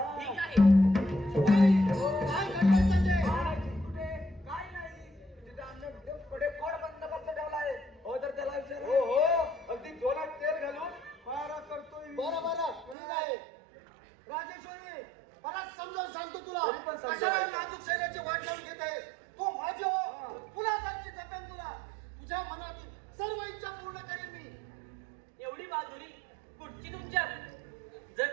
आहे. काय करतोय संजय? कुठे? काय नाही. तिथे आमच्या पुढे कोण बंदोबस्त ठेवलाय? हो तर त्याला विचार. हो हो अगदी डोळ्यात तेल घालून मारा करतोय. बरं बरं ठीक आहे. राजेश्वरी परत समजावून सांगतो तुला. तरी पण समजावं. कशाला नाजूक शरीराची वाट लावून घेत आहेस? तू माझी हो. फुलासारखी जपेन तुला. तुझ्या मनातील सर्व इच्छा पूर्ण करेन मी. एवढी बहादुरी कुठची तुमच्यात? जर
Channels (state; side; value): drops out; left; at 13.0 s